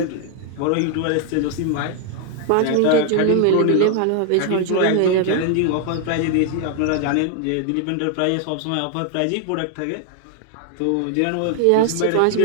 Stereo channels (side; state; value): both; different; correlation 0.00